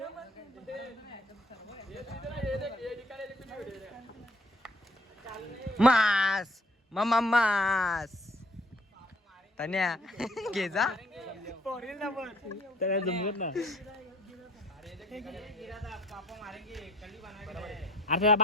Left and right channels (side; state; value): both; normal; correlation 0.58